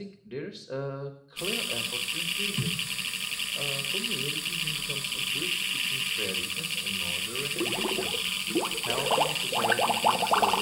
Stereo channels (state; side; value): identical; both; correlation 1.00